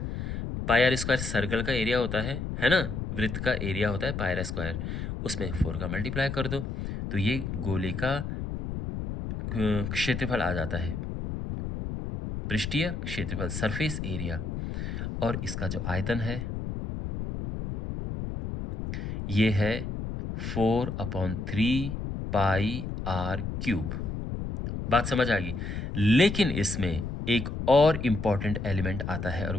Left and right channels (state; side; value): noise; left; rumble, 5 dB below the sound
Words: पाई आर स्क्वायर सर्कल का एरिया होता है ना, वृत्त का एरिया होता है पाई आर स्क्वायर, उसमें 4 का मल्टीप्लाई कर दो तो ये गोले का क्षेत्रफल आ जाता है, पृष्ठीय क्षेत्रफल सरफेस एरिया। और इसका जो आयतन है ये है 4/3 पाई आर क्यूब। बात समझ आ गई। लेकिन इसमें एक और इंपॉर्टेंट एलिमेंट आता है और